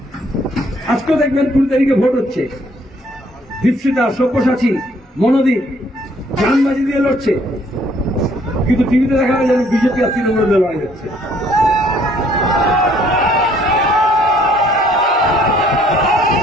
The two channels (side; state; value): both; normal; correlation 0.63